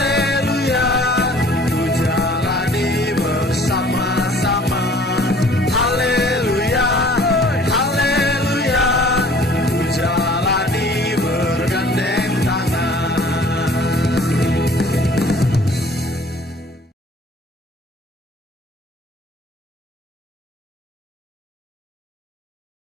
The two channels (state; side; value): normal; both; correlation 0.53